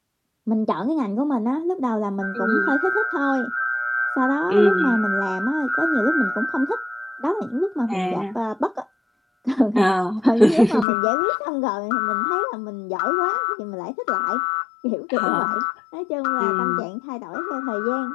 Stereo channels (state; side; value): drops out; right; at 10.9 s